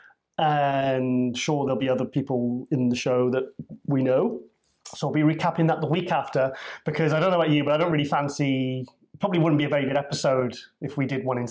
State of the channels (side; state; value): both; identical; correlation 1.00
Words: and sure there'll be other people in the show that we know. So I'll be recapping that the week after, because I don't know about you, but I don't really fancy... Probably wouldn't be a very good episode if we did one in